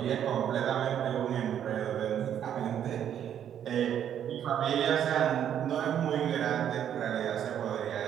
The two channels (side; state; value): left; quieter; 9.7 dB